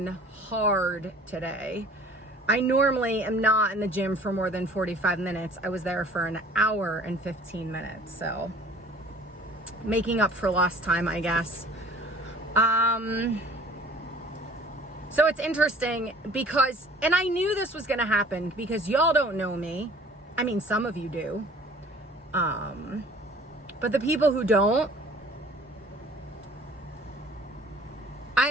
hard today. I normally am not in the gym for more than 45 minutes. I was there for an hour and 15 minutes. So making up for lost time, I guess. So it's interesting because, and I knew this was going to happen because y'all don't know me. I mean, some of you do. But the people who don't,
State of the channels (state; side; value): normal; both; correlation 0.49